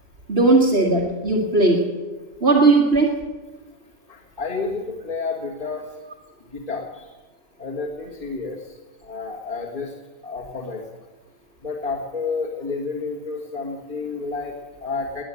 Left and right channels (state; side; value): late; left; 2.9 ms